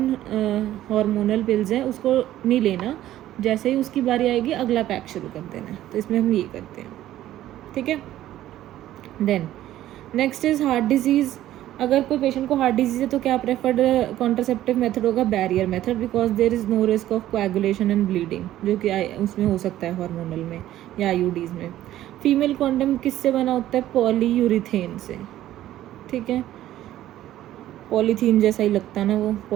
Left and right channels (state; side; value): quieter; left; 13.5 dB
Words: हार्मोनल पिल्स हैं उसको नहीं लेना, जैसे ही उसकी बारी आएगी अगला पैक शुरू कर देना है। तो इसमें हम ये करते हैं, ठीक है। Then next is heart disease. अगर कोई पेशेंट को हार्ट डिजीज़ है तो क्या प्रेफर्ड कॉन्ट्रासेप्टिव मेथड होगा? Barrier method, because there is no risk of coagulation and bleeding, जो कि उसमें हो सकता है हार्मोनल में या आईयूडीज़ में। फीमेल कॉन्डम किससे बना होता है? पॉलीयूरिथेन से, ठीक है, पॉलीथीन जैसा ही लगता है ना वो,